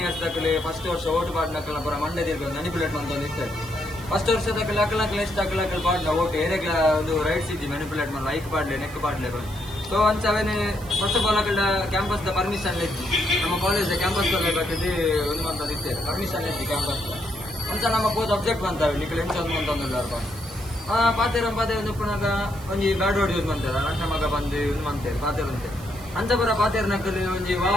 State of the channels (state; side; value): noise; right; hiss, 19 dB below the sound